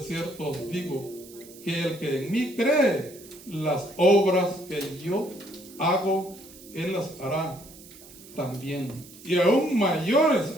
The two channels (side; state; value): right; noise; hiss, 20 dB below the sound